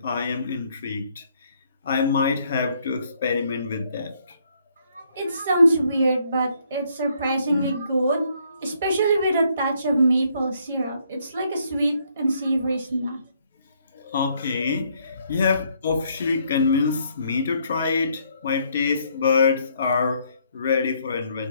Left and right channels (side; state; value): both; inverted; correlation -0.69